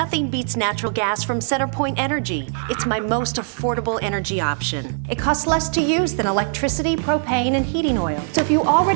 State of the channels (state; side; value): silent; left; digital silence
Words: beats natural gas from CenterPoint Energy. It's my most affordable energy option. It costs less to use than electricity, propane, and heating oil. So if you